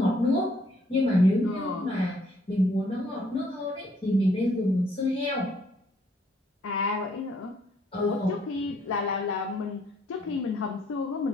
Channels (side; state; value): both; normal; correlation 0.66